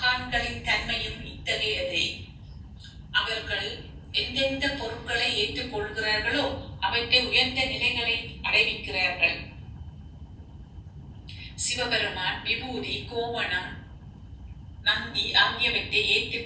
தன்மையும் இத்தகையதே. அவர்கள் எந்தெந்த பொருட்களை ஏற்றுக்கொள்கிறார்களோ அவற்றை உயர்ந்த நிலைகளை அடைவிக்கிறார்கள். சிவபெருமான் விபூதி, கோவணம், நந்தி ஆகியவற்றை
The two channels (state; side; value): identical; both; correlation 1.00